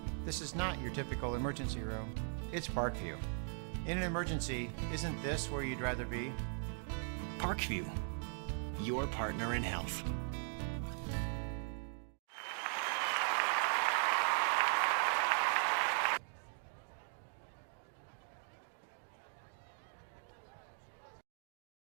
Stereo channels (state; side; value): silent; left; 51 dB below the other